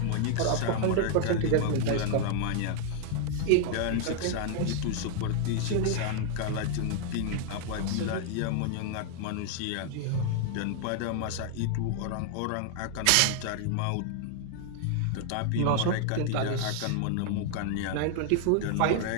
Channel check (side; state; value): both; different; correlation 0.00